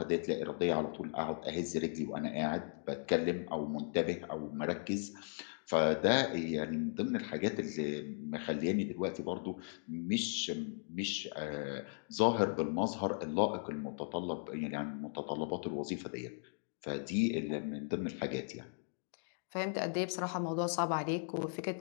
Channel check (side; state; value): right; silent; digital silence